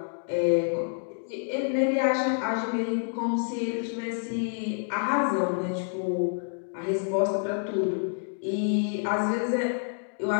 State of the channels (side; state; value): right; silent; digital silence